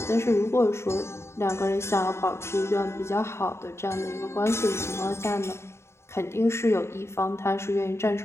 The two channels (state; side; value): late; right; 0.13 ms